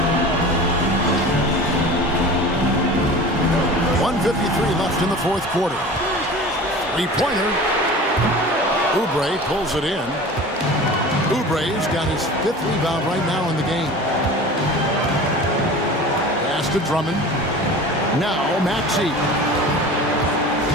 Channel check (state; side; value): normal; both; correlation 0.37